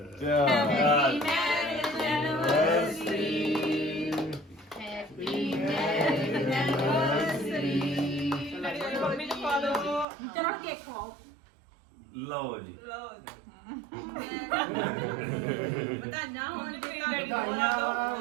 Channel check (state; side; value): drops out; left; at 10.1 s